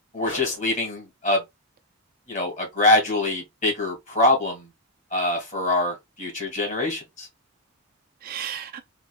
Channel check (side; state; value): both; normal; correlation -0.14